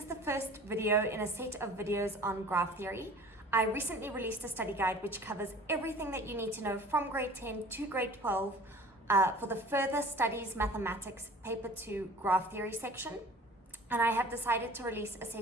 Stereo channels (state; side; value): normal; both; correlation 0.45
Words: the first video in a set of videos on graph theory. I recently released a study guide which covers everything that you need to know from grade 10 to grade 12 for the Further Studies Mathematics Paper 2 Graph Theory section. And I have decided to release a